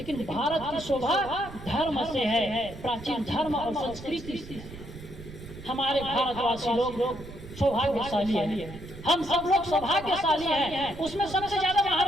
भारत की शोभा धर्म से है, प्राचीन धर्म और संस्कृति से। हमारे भारतवासी लोग सौभाग्यशाली हैं, हम सब लोग सौभाग्यशाली हैं। उसमें सबसे ज्यादा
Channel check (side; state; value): right; noise; rumble, 14 dB below the sound